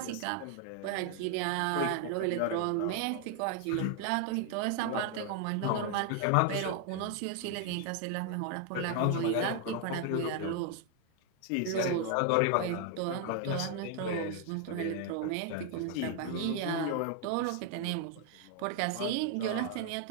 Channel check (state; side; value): different; both; correlation 0.00